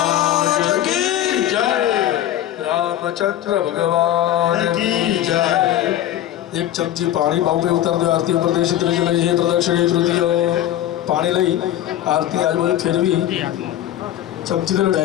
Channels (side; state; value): right; quieter; 12.4 dB